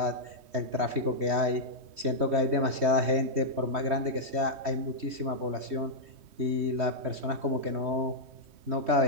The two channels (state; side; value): late; left; 3.2 ms